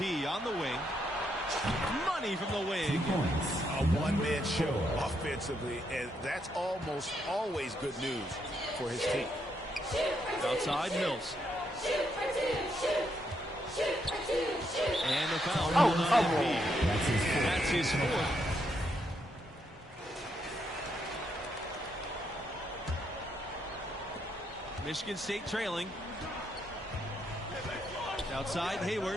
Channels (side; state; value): both; normal; correlation 0.77